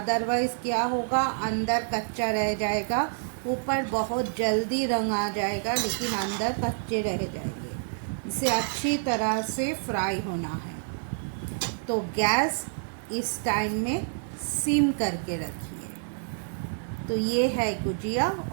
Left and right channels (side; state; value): left; silent; 59 dB below the other